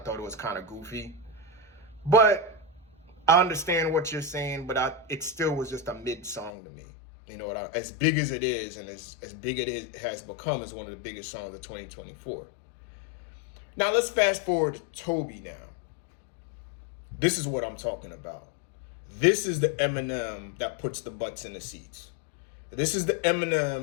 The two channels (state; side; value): drops out; right; at 6.5 s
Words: it was kind of goofy. But I understand what you're saying, but it still was just a mid song to me. As big as it is, and as big it has become as one of the biggest songs of 2024. Now let's fast forward to Tobey now. This is what I'm talking about. This is the Eminem that puts the butts in the seats. This is the